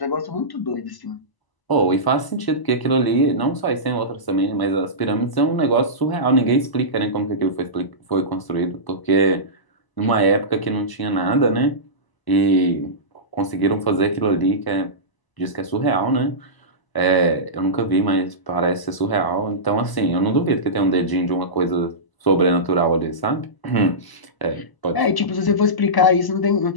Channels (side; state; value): right; late; 1.0 ms